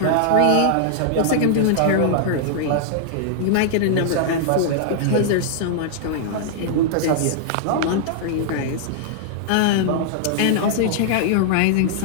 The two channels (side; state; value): both; different; correlation -0.01